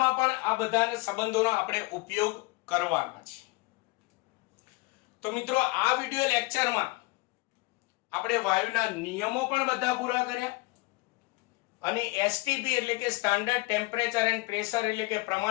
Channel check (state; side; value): quieter; right; 24.4 dB